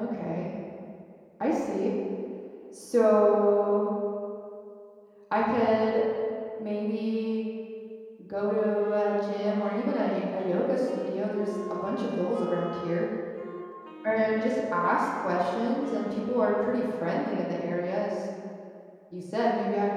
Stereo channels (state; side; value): identical; both; correlation 1.00